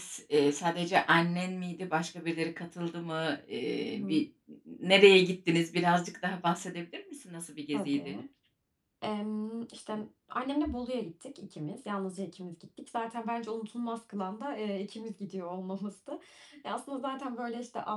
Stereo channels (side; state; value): both; identical; correlation 1.00